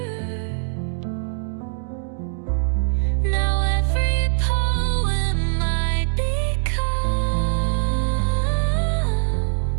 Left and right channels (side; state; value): left; silent; digital silence